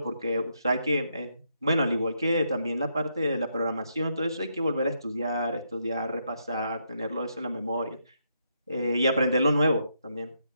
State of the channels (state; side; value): inverted; both; correlation -0.78